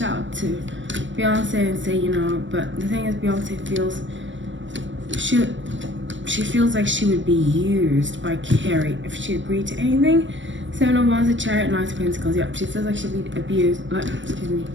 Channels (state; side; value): late; left; 0.55 ms